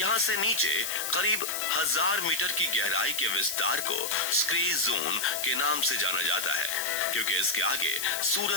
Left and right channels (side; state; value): left; noise; hiss, 3 dB below the sound